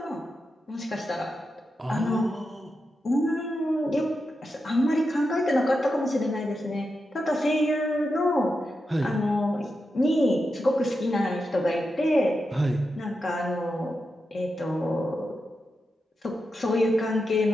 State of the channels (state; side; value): normal; both; correlation 0.88